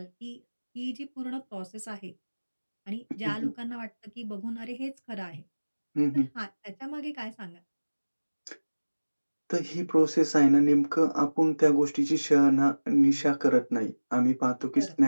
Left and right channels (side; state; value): both; inverted; correlation -1.00